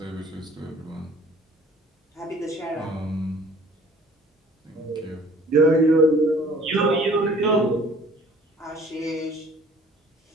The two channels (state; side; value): normal; both; correlation 0.52